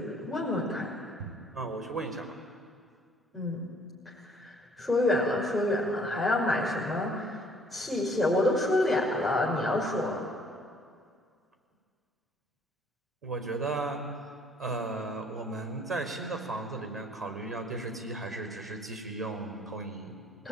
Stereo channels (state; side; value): normal; both; correlation 0.59